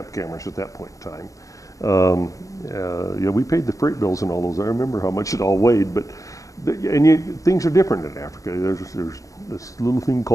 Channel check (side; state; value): right; late; 0.16 ms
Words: cameras at that point in time. Yeah, we paid the freight bills and all those. I remember how much it all weighed, but things are different in Africa. There's this little thing